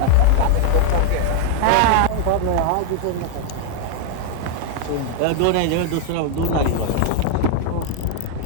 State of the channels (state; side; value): different; both; correlation 0.00